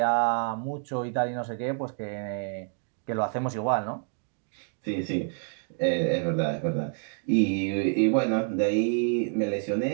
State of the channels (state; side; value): silent; left; 55 dB below the other